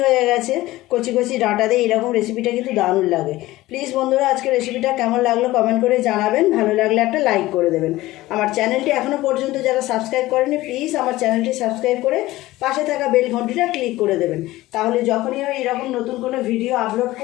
হয়ে গেছে, কচি কচি ডাঁটা দিয়ে এইরকম রেসিপিটা কিন্তু দারুণ লাগে। প্লিজ বন্ধুরা, আজকে রেসিপিটা কেমন লাগলো কমেন্ট করে জানাবেন, ভালো লাগলে একটা লাইক করে দেবেন। আমার চ্যানেলটি এখনও পর্যন্ত যারা সাবস্ক্রাইব করেনি প্লিজ আমার চ্যানেলটি সাবস্ক্রাইব করে পাশে থাকা বেল ঘন্টিটা ক্লিক করে দেবেন, তাহলে যখনই আমি এরকম নতুন কোনো ভিডিও আপলোড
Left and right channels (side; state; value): right; quieter; 17.5 dB